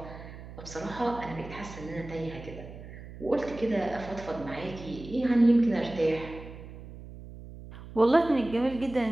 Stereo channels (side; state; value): right; noise; hum, 14 dB below the sound